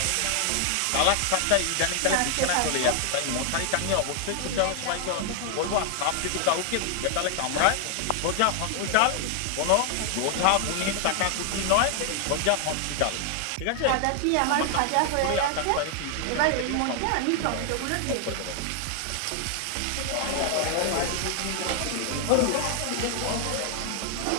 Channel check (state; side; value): different; both; correlation 0.00